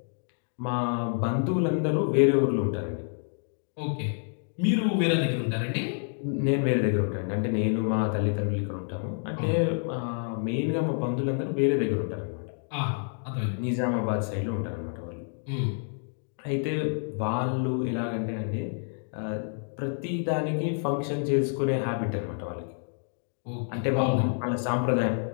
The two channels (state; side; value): silent; right; 59 dB below the other